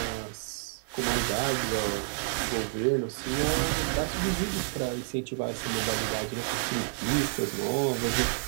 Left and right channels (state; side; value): silent; left; 58 dB below the other